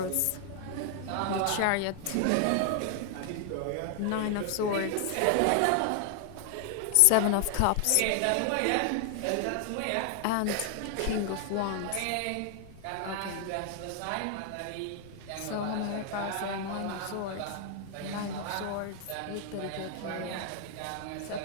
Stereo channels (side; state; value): both; different; correlation 0.00